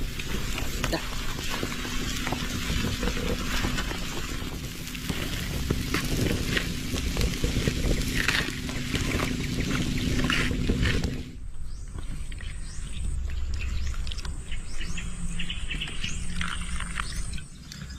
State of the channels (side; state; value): both; identical; correlation 1.00